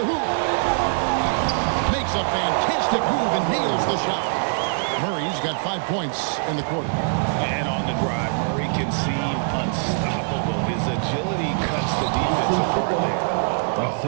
hoop. Makes a fantastic move and nails the shot. Murray's got 5 points in the quarter. And on the drive, Murray can seem unstoppable. His agility cuts the defense apart there.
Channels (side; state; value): left; silent; digital silence